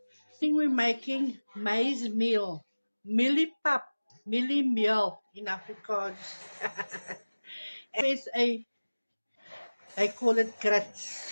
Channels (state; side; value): inverted; both; correlation -1.00